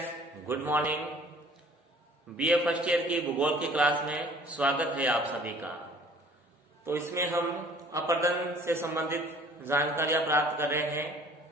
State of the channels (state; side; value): normal; both; correlation 0.52